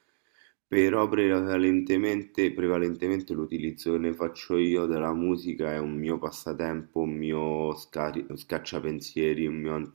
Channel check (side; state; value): left; silent; digital silence